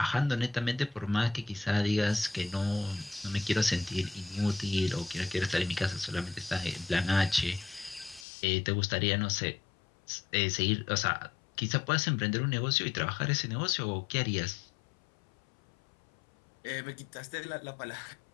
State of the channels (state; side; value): drops out; right; at 8.2 s